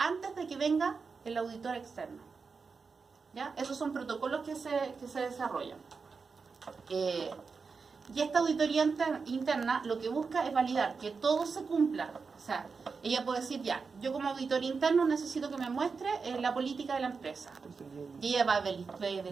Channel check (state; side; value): quieter; left; 5.0 dB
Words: de que venga el auditor externo. ¿Ya? Esos son protocolos que se desarrollan. Y esta auditoría interna lo que busca es validar que todo se cumpla. O sea, ella puede decir, ya, yo como auditor interno necesito que me muestre la política de la empresa. Y ella va a